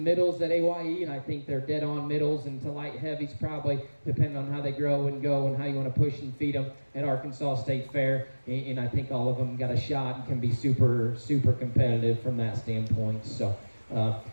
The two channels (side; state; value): both; inverted; correlation -1.00